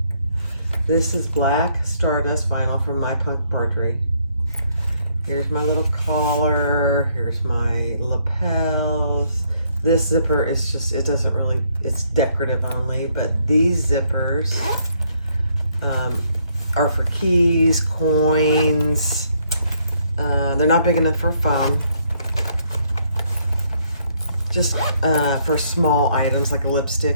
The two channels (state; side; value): inverted; both; correlation -0.69